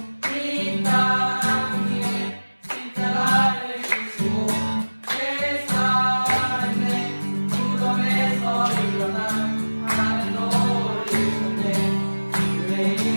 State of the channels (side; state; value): both; inverted; correlation -1.00